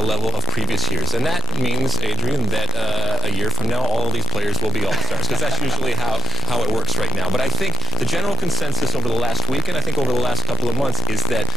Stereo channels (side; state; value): both; normal; correlation 0.44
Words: level of previous years. And that means, Adrian, that a year from now, all of these players will be all-stars, because that's usually how it works right now. But I think the general consensus over the last week, and I think over the last couple of months, is that